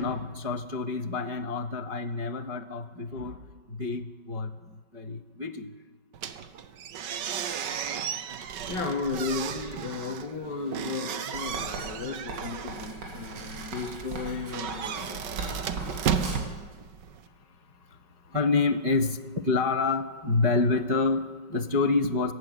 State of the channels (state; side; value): late; left; 5.3 ms